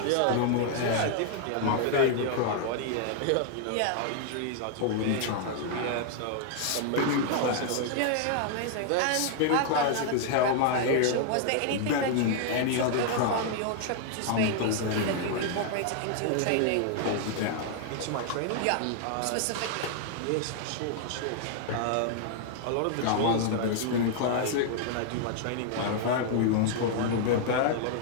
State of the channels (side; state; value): both; different; correlation 0.00